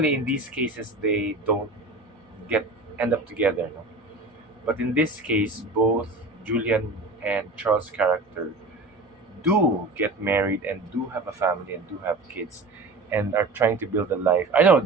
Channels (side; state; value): left; quieter; 3.1 dB